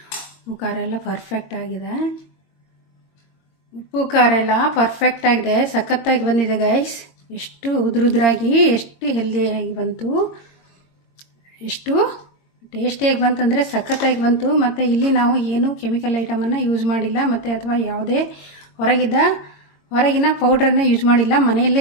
ಉಪ್ಪು ಖಾರ ಎಲ್ಲ ಪರ್ಫೆಕ್ಟಾಗಿದೆ, ಉಪ್ಪು ಖಾರ ಎಲ್ಲ ಪರ್ಫೆಕ್ಟಾಗಿದೆ, ಸಖತ್ತಾಗಿ ಬಂದಿದೆ ಗೈಸ್. ಎಷ್ಟು ಉದುರಾಗಿ ಎಷ್ಟು ಹೆಲ್ದಿಯಾಗಿ ಬಂತು, ಎಷ್ಟು ಟೇಸ್ಟಿಯಾಗಿ ಬಂತಂದರೆ ಸಖತ್ತಾಗಿ ಬಂತು. ಮತ್ತು ಇಲ್ಲಿ ನಾವು ಏನು ಕೆಮಿಕಲ್ ಐಟಮನ್ನು ಯೂಸ್ ಮಾಡಿಲ್ಲ, ಮತ್ತು ಅಥವಾ ಯಾವುದೇ ಹೊರಗಿನ ಪೌಡ್ರನ್ನೇ ಯೂಸ್ ಮಾಡಿಲ್ಲ.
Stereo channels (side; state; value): right; late; 22 ms